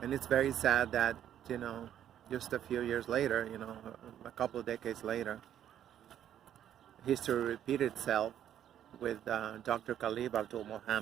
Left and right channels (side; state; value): left; quieter; 10.5 dB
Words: And it's very sad that, just a few years later, a couple of decades later, history repeated itself with Dr. Khalid Abdul